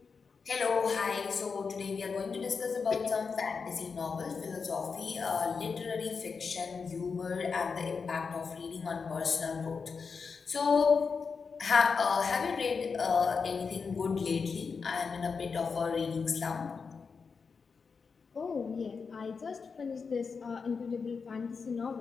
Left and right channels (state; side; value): quieter; right; 5.3 dB